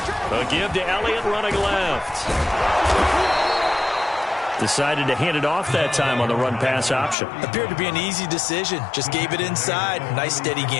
A give to Elliott running left. Decided to hand it off that time on the run-pass option. Appeared to be an easy decision. Just gave it inside. Nice steady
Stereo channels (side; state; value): right; drops out; at 7.2 s